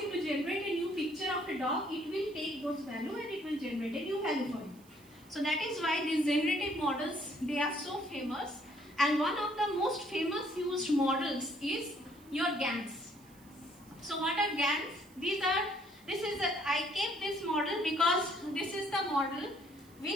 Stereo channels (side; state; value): right; noise; hiss, 26 dB below the sound